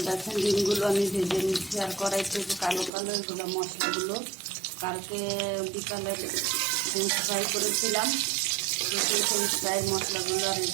দেখেন ডিমগুলো আমি ভেজে নিচ্ছি। আর কড়াইতে যে কালো কালো এগুলো মশলাগুলো কালকে বিকালে ফ্রেঞ্চ ফ্রাই করেছিলাম। সেই ফ্রেঞ্চ ফ্রাইয়ের মশলাগুলো আর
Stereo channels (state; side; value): drops out; left; at 2.9 s